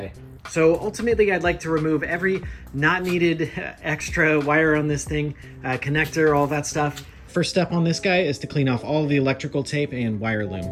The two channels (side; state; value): both; identical; correlation 1.00